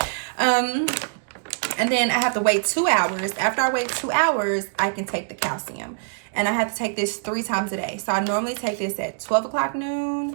And then I have to wait 2 hours. After I wait 2 hours, I can take the calcium. And I have to take this 3 times a day. So I normally take this at 12 o'clock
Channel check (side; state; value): left; silent; digital silence